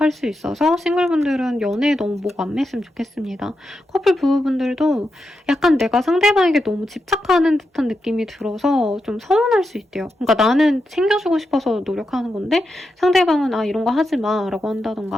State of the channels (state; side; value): normal; both; correlation 0.87